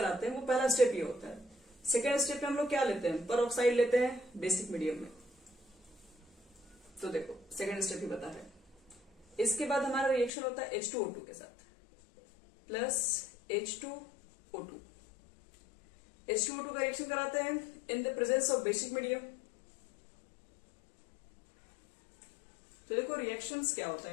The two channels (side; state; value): right; drops out; at 10.3 s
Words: हैं वो पहला स्टेप ये होता है। सेकेंड स्टेप में हम लोग क्या लेते हैं, पर ऑक्साइड लेते हैं बेसिक मीडियम में। तो देखो सेकेंड स्टेप ही बता रहे हैं। इसके बाद हमारा रिएक्शन होता है H2O2 के साथ प्लस H2O2। H2O2 का रिएक्शन कराते हैं इन the presence of basic medium. तो देखो रिएक्शंस क्या होता